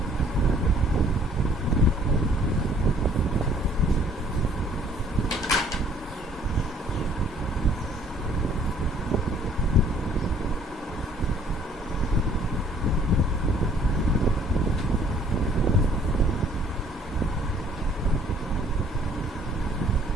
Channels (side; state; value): both; normal; correlation 0.58